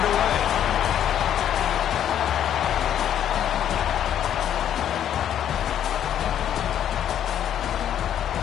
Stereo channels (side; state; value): right; quieter; 10.2 dB